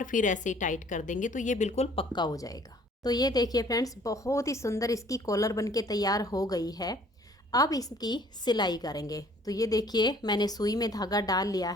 फिर ऐसे ही टाइट कर देंगे तो ये बिल्कुल पक्का हो जाएगा। तो ये देखिए फ्रेंड्स, बहुत ही सुंदर इसकी कॉलर बनके तैयार हो गई है। अब इसकी सिलाई करेंगे। तो ये देखिए, मैंने सुई में धागा डाल लिया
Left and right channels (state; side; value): normal; both; correlation 0.56